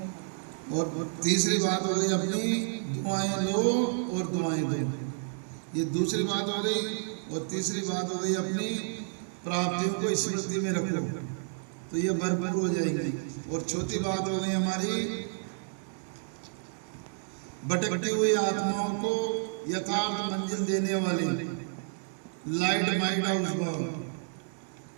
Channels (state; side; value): silent; left; digital silence